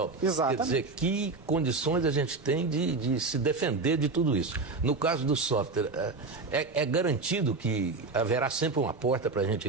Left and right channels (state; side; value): quieter; left; 3.8 dB